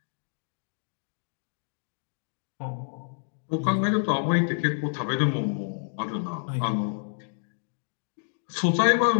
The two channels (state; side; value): silent; right; digital silence